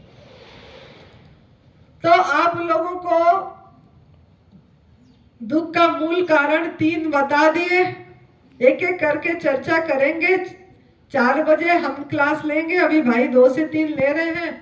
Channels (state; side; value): identical; both; correlation 1.00